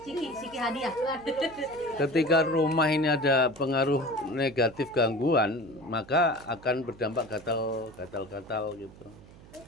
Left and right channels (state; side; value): noise; right; hum, 21 dB below the sound